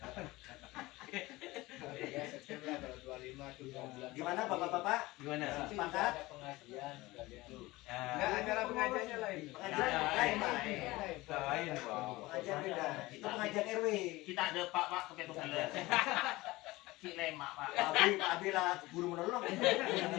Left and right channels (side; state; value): right; quieter; 20.0 dB